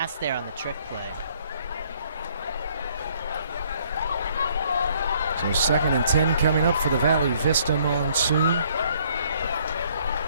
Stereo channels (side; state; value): both; inverted; correlation -0.63